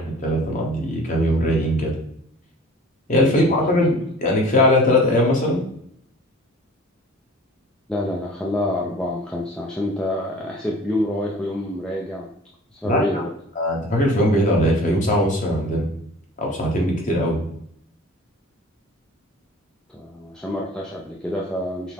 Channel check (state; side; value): normal; both; correlation 0.44